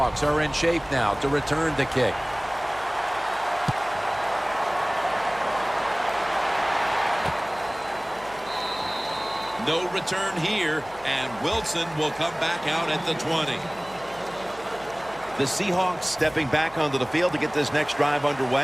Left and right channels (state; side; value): noise; right; hum, 23 dB below the sound